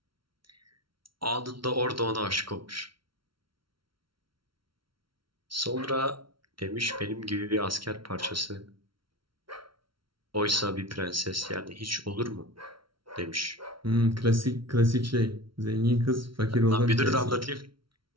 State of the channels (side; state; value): left; late; 0.74 ms